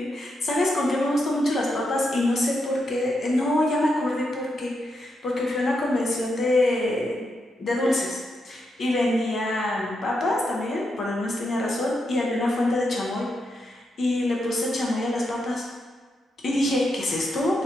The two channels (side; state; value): both; normal; correlation 0.83